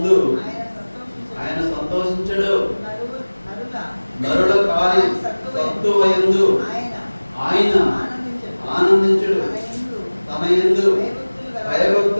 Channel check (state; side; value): inverted; both; correlation -1.00